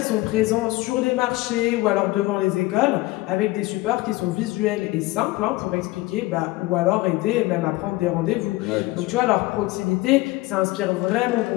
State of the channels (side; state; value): right; quieter; 20.0 dB